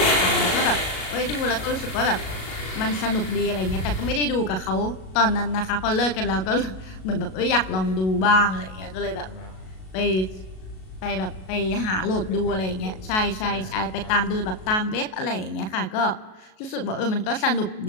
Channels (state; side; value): late; right; 37 ms